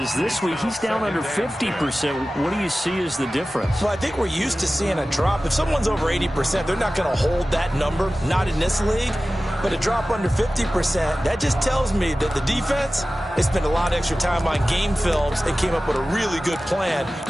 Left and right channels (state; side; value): normal; both; correlation 0.96